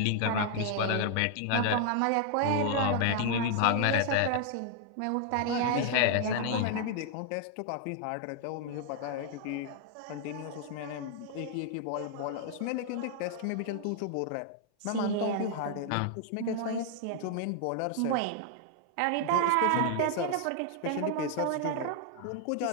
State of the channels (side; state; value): both; different; correlation 0.00